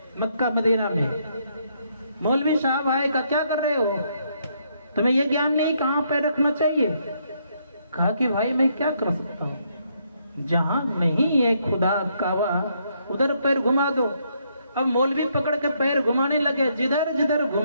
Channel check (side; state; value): both; inverted; correlation -0.73